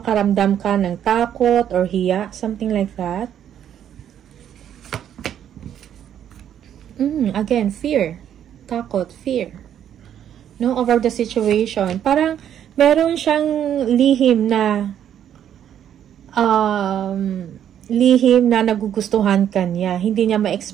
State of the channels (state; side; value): quieter; left; 9.9 dB